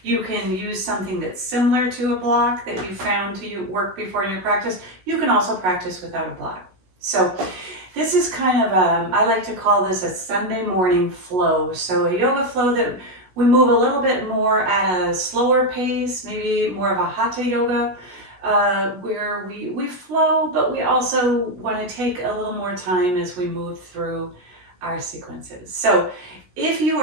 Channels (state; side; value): late; left; 16 ms